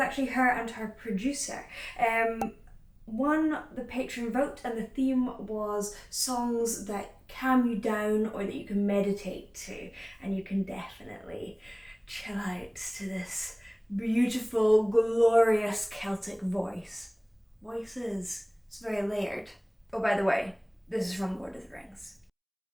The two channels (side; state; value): both; identical; correlation 1.00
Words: her and her producer. Won the patron vote, and the theme was songs that calm you down or that you can meditate to, and you can definitely chill out to this beautiful, glorious Celtic voices. It's very layered. Oh, by the way, this is from Lord of the Rings.